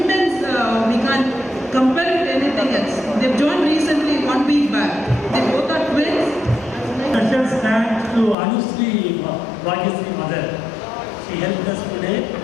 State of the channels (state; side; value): drops out; right; at 8.3 s